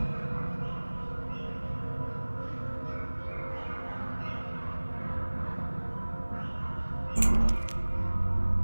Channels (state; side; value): inverted; both; correlation -1.00